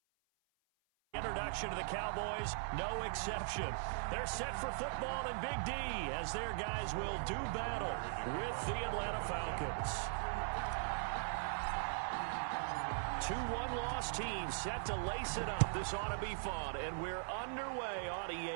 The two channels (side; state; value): left; silent; 51 dB below the other